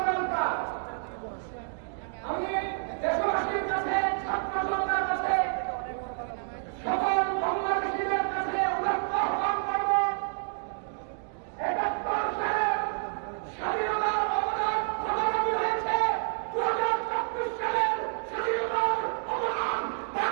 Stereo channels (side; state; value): left; silent; digital silence